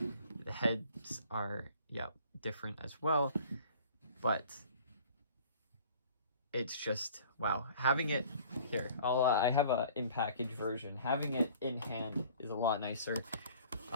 The heads are, yeah, different as well, but it's just, wow. Having it here, I have a in-package version. Having it in hand is a lot nicer,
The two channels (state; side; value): inverted; both; correlation -0.50